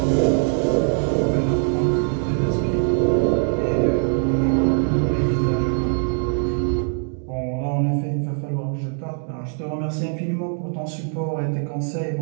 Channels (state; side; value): silent; left; 56 dB below the other